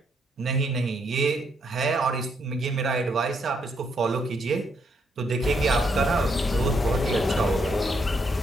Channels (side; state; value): both; normal; correlation 0.75